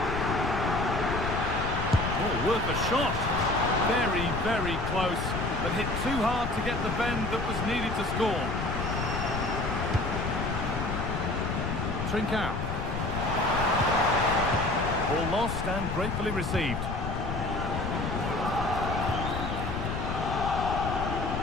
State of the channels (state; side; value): noise; left; rumble, 4 dB below the sound